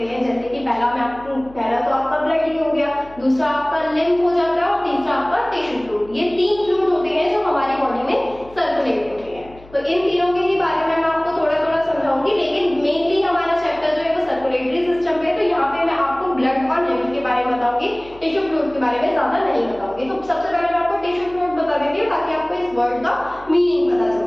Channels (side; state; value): left; noise; hum, 22 dB below the sound